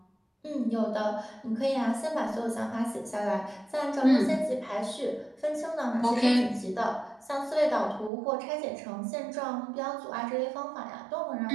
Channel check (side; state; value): left; drops out; at 8.1 s